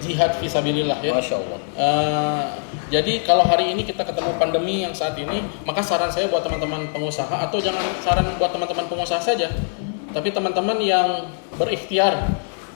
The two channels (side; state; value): right; silent; digital silence